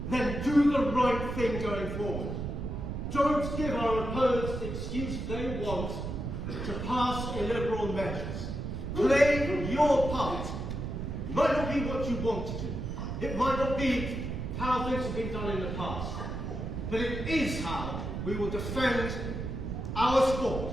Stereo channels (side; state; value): right; noise; rumble, 4 dB below the sound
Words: then do the right thing going forward. Don't give our opponents the excuse they want to pass illiberal measures. Play your part. It might not be what you want to do. It might not be how things have been done in the past. But it is how we will defend our